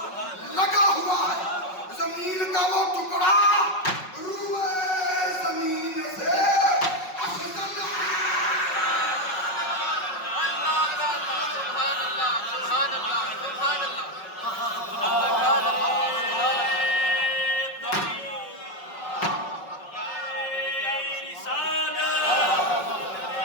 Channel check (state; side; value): late; right; 5.4 ms